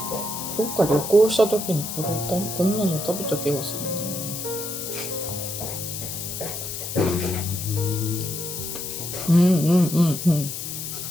どっか旅行した時にこんなの食べた気がするな。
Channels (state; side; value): noise; left; hiss, 6 dB below the sound